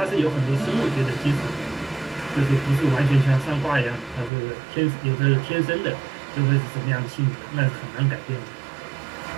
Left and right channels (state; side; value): drops out; left; at 4.3 s